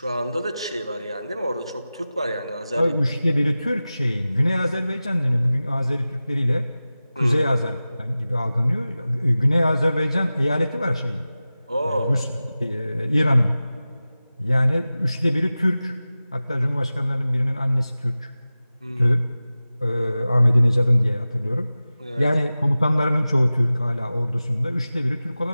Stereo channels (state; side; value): inverted; both; correlation -0.96